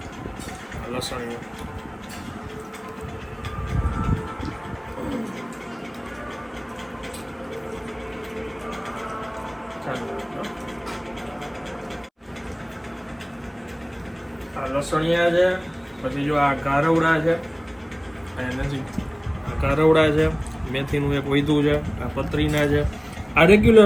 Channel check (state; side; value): identical; both; correlation 1.00